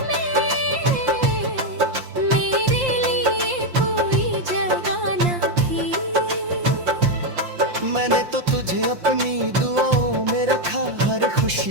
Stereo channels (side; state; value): left; late; 5.7 ms